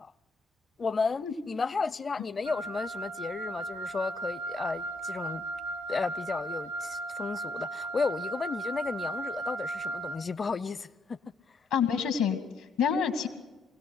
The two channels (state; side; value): quieter; right; 3.5 dB